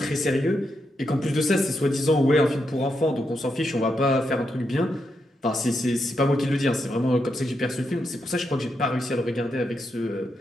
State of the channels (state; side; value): normal; both; correlation 0.83